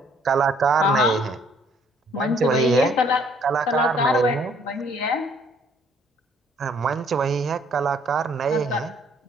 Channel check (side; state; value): both; normal; correlation 0.63